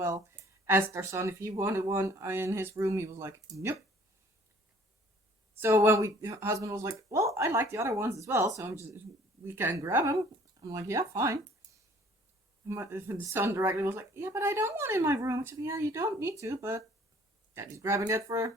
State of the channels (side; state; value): both; normal; correlation 0.55